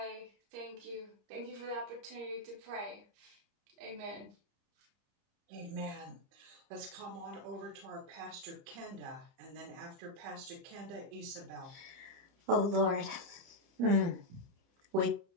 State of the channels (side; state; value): left; late; 29 ms